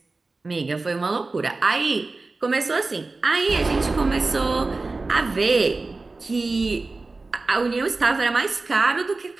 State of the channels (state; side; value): quieter; left; 3.6 dB